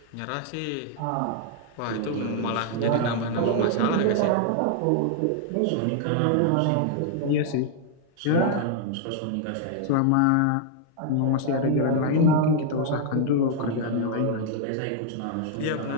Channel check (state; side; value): different; both; correlation 0.00